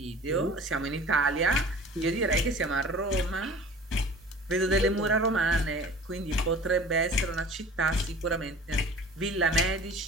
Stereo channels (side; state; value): both; normal; correlation 0.43